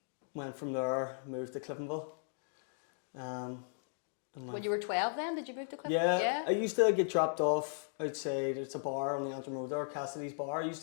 went from there, moved to Cliftonville. When you were 12 then, did you move to Clifton? Yeah, I used to get dropped off outside. It's a bar on the Antrim Road there, Cassidy's Bar. I used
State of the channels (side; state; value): right; silent; digital silence